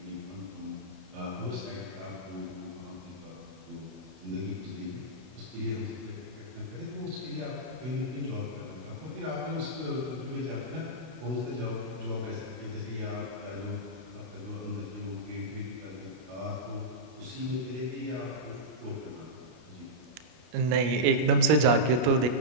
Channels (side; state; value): left; late; 33 ms